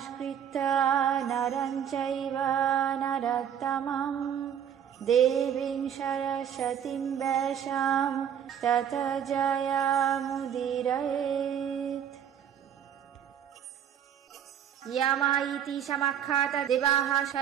নরং চৈব নরোত্তমং দেবীং সরস্বতীং ব্যাসাং ততো জয়মুদীরয়েৎ। यामा इति समाख्यात देवाः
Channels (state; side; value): quieter; left; 9.1 dB